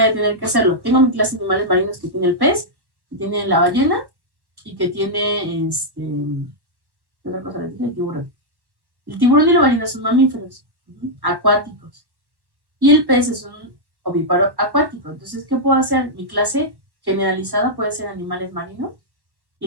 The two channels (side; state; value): left; late; 1.1 ms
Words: a tener que hacerlo? Tengo mi clase de animales marinos que tiene el pez, que tiene la ballena y que tiene ¿qué otra cosa le dije? El tiburón. El tiburón y la ballena son mamíferos acuáticos. Y el pez es un ovíparo acuático. Entonces, ¿qué puedo hacer? Mi clase generalizada puede ser animales marinos y